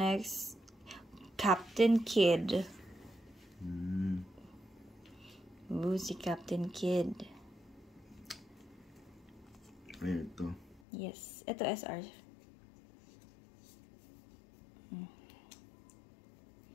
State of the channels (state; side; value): drops out; right; at 10.8 s